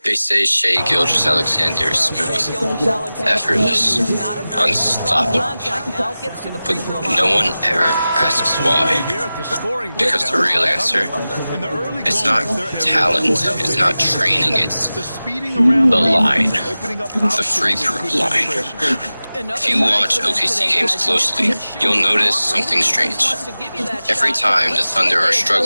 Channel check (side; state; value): both; inverted; correlation -0.96